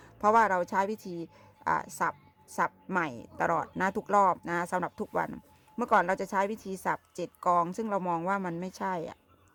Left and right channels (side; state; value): both; identical; correlation 1.00